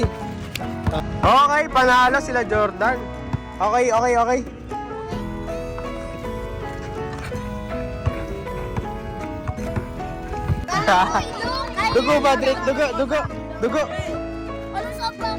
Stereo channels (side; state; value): both; identical; correlation 1.00